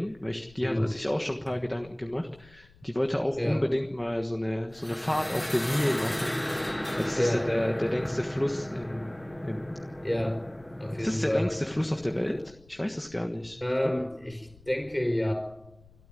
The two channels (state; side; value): noise; left; rumble, 25 dB below the sound